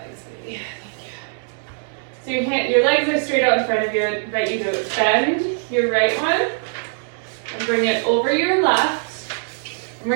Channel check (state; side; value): silent; left; 65 dB below the other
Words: legs, baby? Thank you. So your legs are straight out in front of you. I invite you to bend your right one and bring it over your left. And